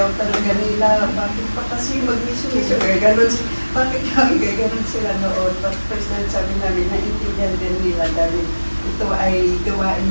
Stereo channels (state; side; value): inverted; both; correlation -1.00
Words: talaga nila. Bakit pa kasi mag-mission? Gano'n, bakit kami gano'n sila noon? But first time sabi namin, naintindihan din nila dahil ito ay gawain